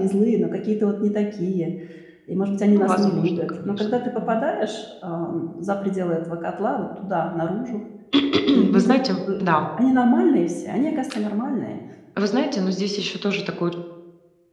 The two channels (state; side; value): identical; both; correlation 1.00